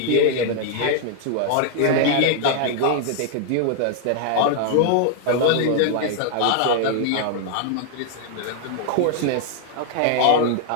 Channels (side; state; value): both; different; correlation 0.00